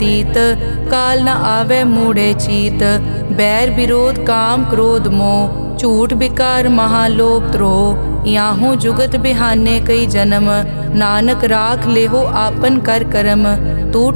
काल न आवे मूढ़े चीत। बैर विरोध काम क्रोध मोह, झूठ विकार महालोभ द्रोह। याहू जुगत बिहाने कई जन्म, नानक राख लेहो आपन कर करम। तू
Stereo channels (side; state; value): both; inverted; correlation -1.00